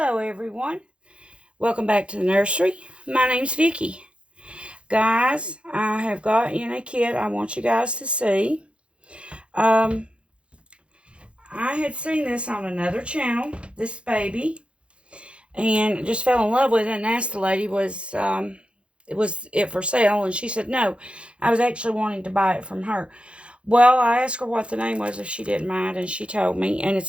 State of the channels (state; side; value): late; left; 0.059 ms